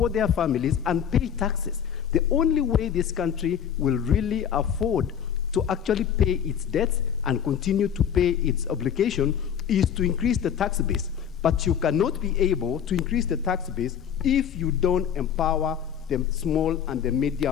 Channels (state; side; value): quieter; right; 8.6 dB